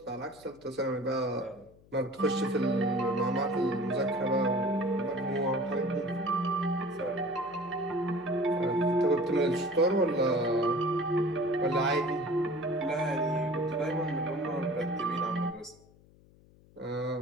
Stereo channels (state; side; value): noise; left; hum, 27 dB below the sound